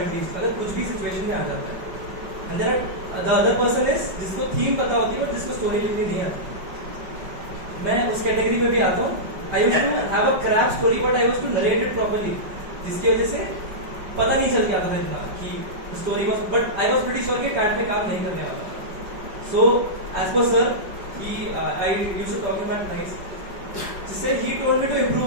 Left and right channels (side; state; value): left; late; 5.2 ms